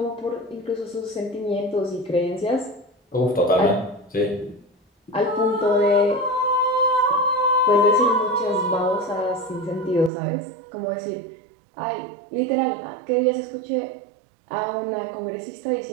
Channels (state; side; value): drops out; left; at 10.1 s